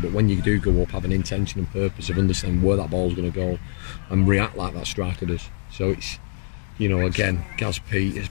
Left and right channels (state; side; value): silent; right; digital silence